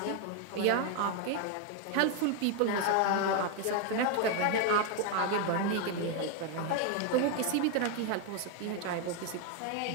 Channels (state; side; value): different; both; correlation 0.01